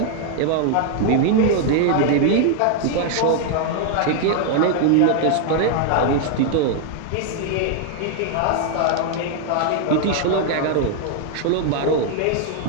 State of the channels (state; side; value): different; both; correlation 0.00